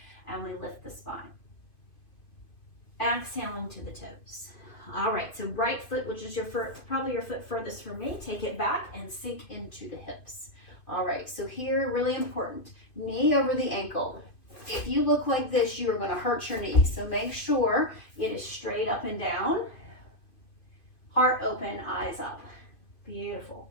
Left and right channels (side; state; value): right; late; 2.5 ms